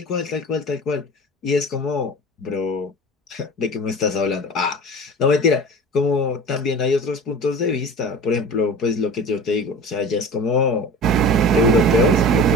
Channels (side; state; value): both; normal; correlation 0.36